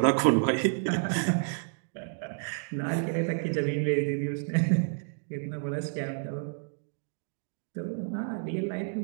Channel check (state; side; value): silent; left; digital silence